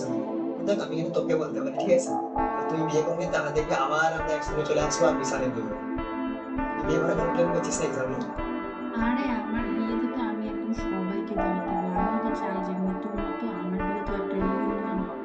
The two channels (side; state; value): both; identical; correlation 1.00